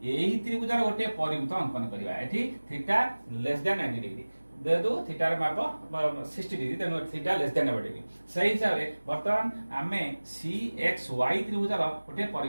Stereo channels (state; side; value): inverted; both; correlation -1.00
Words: एही त्रिभुज गोटे परिवृत्त अंकन करिवा एठी थीटा लेस देन 90 डिग्री देदु थीटा रे माप 60 डिग्री तेनु थीटा लेस देन 90 डिग्री सही हिसाब रे वर्तमान आमे सी एक्स वाई त्रिभुज रो गोटे